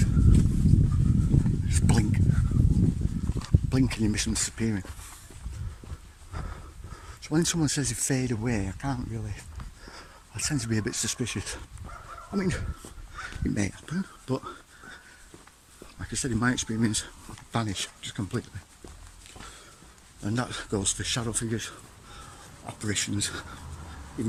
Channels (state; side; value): identical; both; correlation 1.00